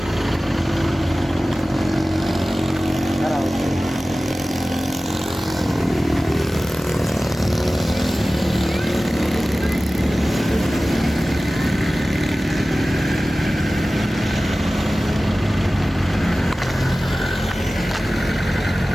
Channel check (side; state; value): both; normal; correlation 0.96